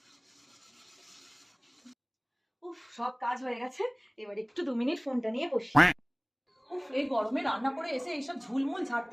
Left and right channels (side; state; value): both; identical; correlation 1.00